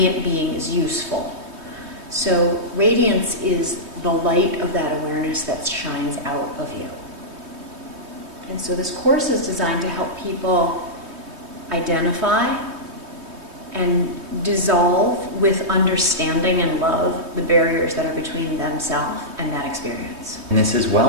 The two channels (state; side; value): late; left; 3.2 ms